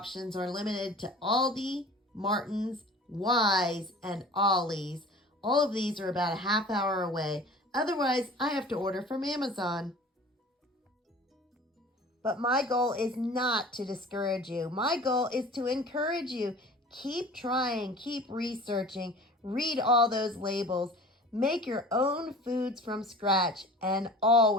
are limited to Aldi, Martin's, Wise, and Ollie's. All of these are about a half hour away. Otherwise, I have to order from Amazon. But my goal is not to discourage you. My goal is to encourage you. Keep trying, keep researching, read all those labels. Make your own foods from scratch and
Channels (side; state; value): both; normal; correlation 0.42